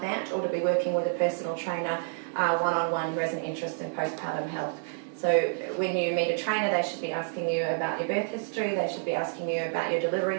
that, or to be working with a personal trainer one-on-one who has an interest in postpartum health. So when you meet a trainer, they should be asking you about your birth history, they should be asking you about your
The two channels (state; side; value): silent; left; 59 dB below the other